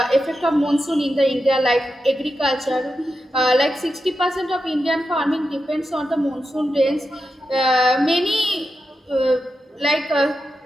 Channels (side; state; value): both; normal; correlation 0.89